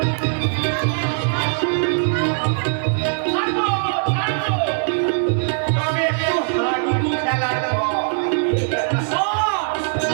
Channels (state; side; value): silent; left; digital silence